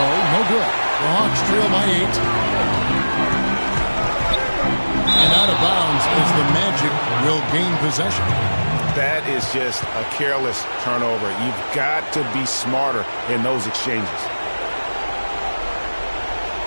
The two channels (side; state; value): both; inverted; correlation -1.00